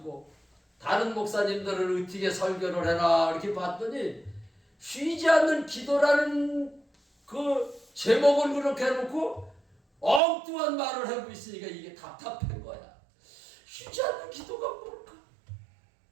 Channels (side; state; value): left; drops out; at 10.2 s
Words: 다른 목사님들을 어떻게 설교를 해라 이렇게 봤더니 쉬지 않는 기도라는 그 제목을 그렇게 해놓고 엉뚱한 말을 하고 있으니까 이게 답답한 거야. 쉬지 않는 기도가 뭘까?